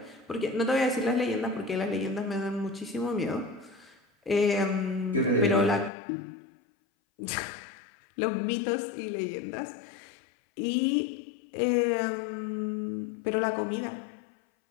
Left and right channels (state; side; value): drops out; right; at 5.9 s